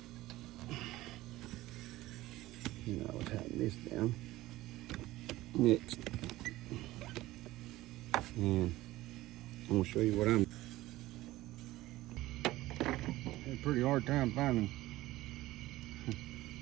And I'll tighten this down next. And I'm going to show you what I'm. Had a pretty hard time finding.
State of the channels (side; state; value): left; quieter; 17.1 dB